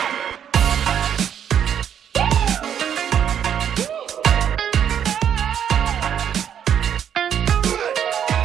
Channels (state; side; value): quieter; left; 9.0 dB